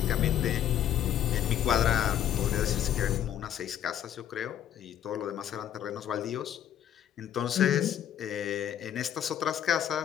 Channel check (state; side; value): quieter; right; 10.4 dB